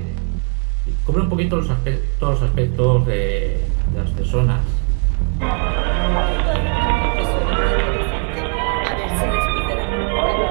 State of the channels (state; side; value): quieter; left; 38.2 dB